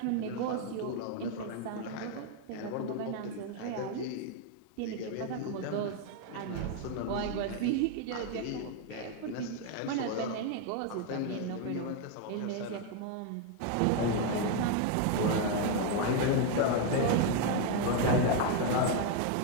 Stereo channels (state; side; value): different; both; correlation 0.01